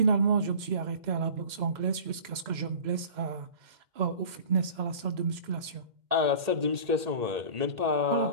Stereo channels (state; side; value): late; left; 2.1 ms